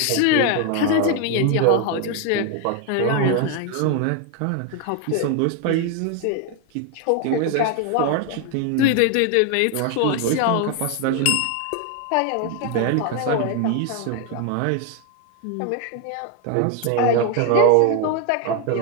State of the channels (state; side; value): different; both; correlation 0.01